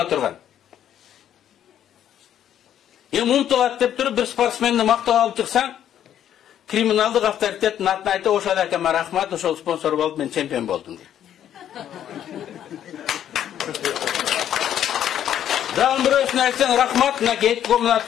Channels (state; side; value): quieter; right; 10.4 dB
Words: турган. Эми умтулат деп туруп бир спортсменди мактап алып чыксаң, криминалдык авторитеттин атын айтып, ошол акама рахмат, ошол спонсор болуп мен чемпион болдум дейт. Дагы бирөөсүнө айтсаң рахмат, мынакей комнат